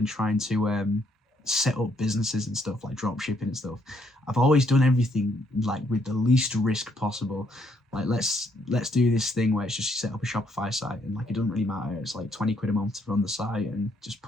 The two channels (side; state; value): both; normal; correlation 0.71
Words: trying to set up businesses and stuff, like drop shipping and stuff, I've always done everything like with the least risk possible. Like let's do this thing where it's just you set up a Shopify site and like it doesn't really matter. It's like 20 quid a month to run the site and just